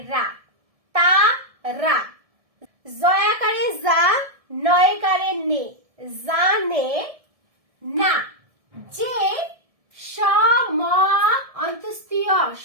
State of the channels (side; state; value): left; late; 1.7 ms